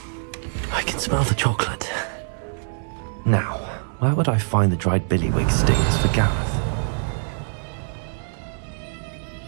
I can smell the chocolate. Now, where would I find the dried billywig stings for Gareth?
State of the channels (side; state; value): left; silent; 63 dB below the other